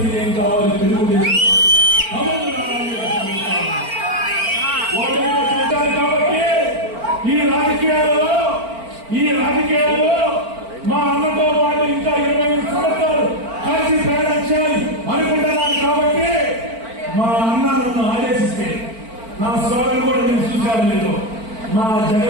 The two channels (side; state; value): left; late; 4.4 ms